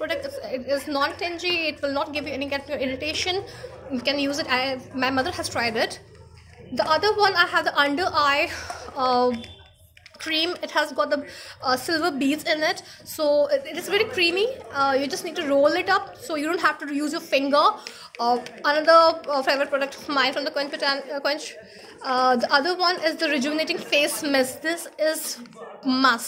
It is non-tingy. It will not give you any kind of irritation. You can use it. My mother has tried it. The other one, I have the under eye cream. It has got the silver beads in it, so it is very creamy. You just need to roll it up, so you don't have to use your finger. Another favorite product of mine from the Quench. The other one is the rejuvenating face mist. This is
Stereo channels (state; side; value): identical; both; correlation 1.00